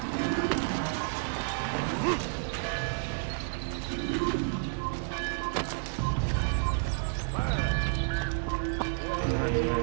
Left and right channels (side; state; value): left; silent; digital silence